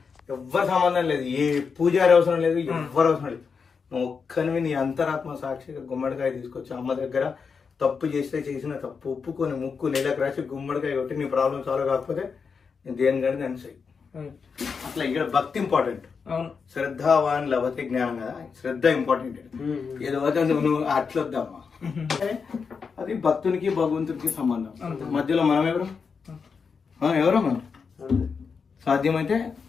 ఎవ్వరు సంబంధం లేదు, ఏ పూజారి అవసరం లేదు, ఎవ్వరు అవసరం లేదు. నువ్వు ఒక్కనివి నీ అంతరాత్మ సాక్షిగా గుమ్మడికాయ తీసుకొచ్చి అమ్మ దగ్గర తప్పు చేస్తే చేసిన తప్పు ఒప్పుకొని ముక్కు నెలకు రాసి గుమ్మడికాయ కొట్టి నీ ప్రాబ్లం సాల్వ్ కాకపోతే నేను దేనికంటే నేను చెయ్యి. అట్లా ఇక్కడ భక్తి ఇంపార్టెంట్. శ్రద్ధావాన్ లభతే జ్ఞానం కదా, శ్రద్ధ ఇంపార్టెంట్. ఏదో నువ్వు అట్లొద్దామా, అది భక్తునికి భగవంతునికి సంబంధం. మధ్యలో మనం ఎవరో మనం సాధ్యమైతే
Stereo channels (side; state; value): right; quieter; 5.6 dB